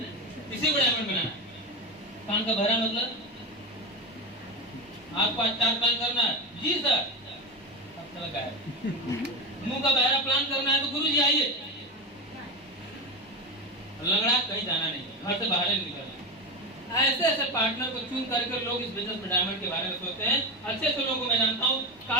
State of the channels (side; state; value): both; normal; correlation 0.17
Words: इसी को डायमंड बनाना है। कान का बहरा मतलब आपको आज 4 प्लान करना है, जी सर, अब चला गया। मुंह का बहरा प्लान करना है तो गुरु जी आइए। लंगड़ा कहीं जाना नहीं, घर से बाहर नहीं निकलना। ऐसे ऐसे पार्टनर को चुन करके लोग इस बिजनेस में डायमंड के बारे में सोचते हैं। अच्छे से लोगों को मैं जानता हूँ,